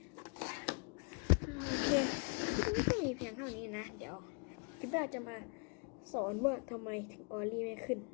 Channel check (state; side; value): quieter; right; 37.6 dB